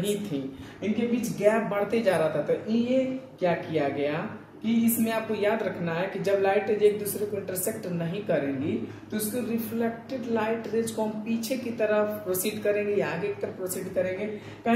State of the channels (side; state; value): both; identical; correlation 1.00